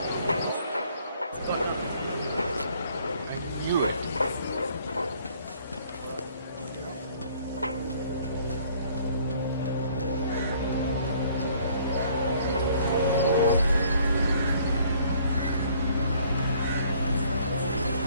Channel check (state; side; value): inverted; both; correlation -0.60